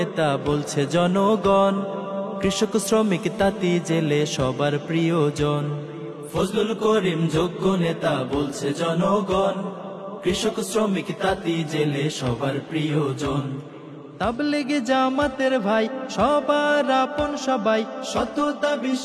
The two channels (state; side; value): identical; both; correlation 1.00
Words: বলছে জনগণ, কৃষক শ্রমিক তাঁতি জেলে সবার প্রিয়জন। ফজলুল করিম যোগ্য নেতা বলছে জনগণ, কৃষক শ্রমিক তাঁতি জেলে সবার প্রিয়জন। তাবলিগে জামাতের ভাই সবার আপন সবাই, সততা